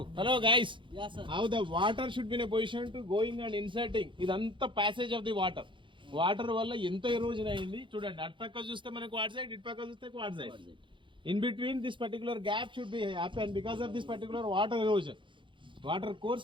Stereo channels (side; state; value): left; late; 0.24 ms